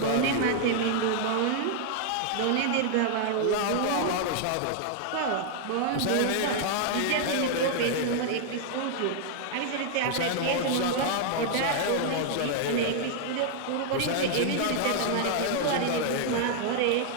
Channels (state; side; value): different; both; correlation 0.00